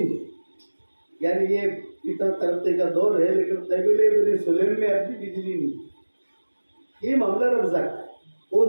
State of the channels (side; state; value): both; inverted; correlation -1.00